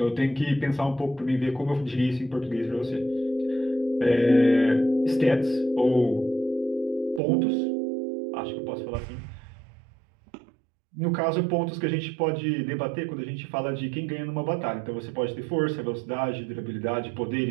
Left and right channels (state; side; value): drops out; left; at 7.2 s